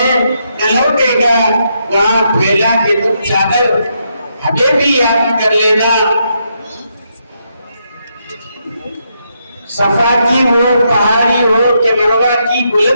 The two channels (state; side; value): inverted; both; correlation -0.79